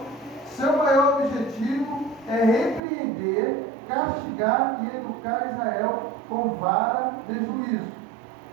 seu maior objetivo é repreender, castigar e educar Israel com vara de juízo.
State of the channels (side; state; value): left; drops out; at 2.8 s